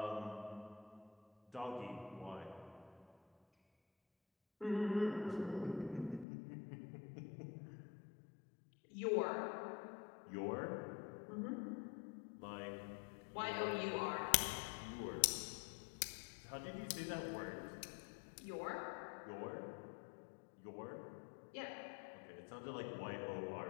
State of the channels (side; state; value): right; drops out; at 6.2 s